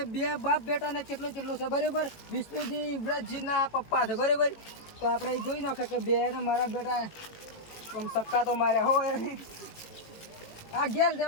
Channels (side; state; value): right; late; 18 ms